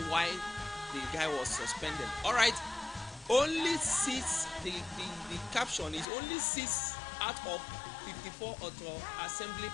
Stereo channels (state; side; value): drops out; right; at 6.1 s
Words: why the guy was suspended. Alright. Only 6, the caption is only 6 out of 54 auto assembly